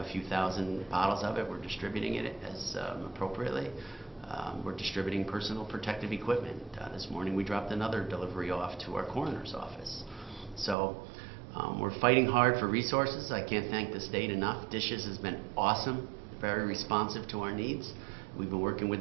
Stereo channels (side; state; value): left; drops out; at 10.8 s